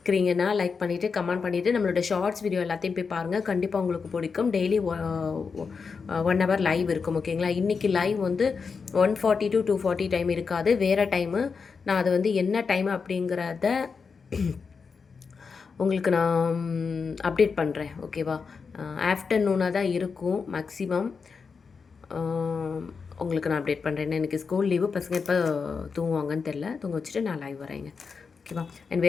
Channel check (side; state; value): right; quieter; 5.3 dB